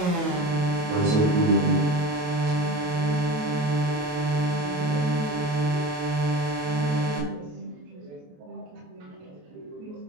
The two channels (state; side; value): late; left; 28 ms